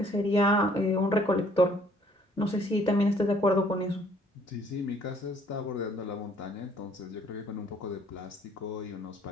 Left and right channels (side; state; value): both; normal; correlation 0.61